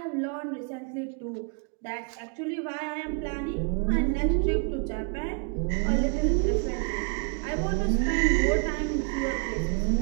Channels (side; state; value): left; quieter; 39.5 dB